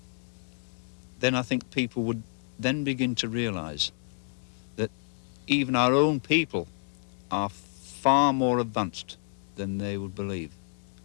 then I think people would then begin to realize that even our own people are far more advanced than they would believe.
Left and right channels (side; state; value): right; silent; digital silence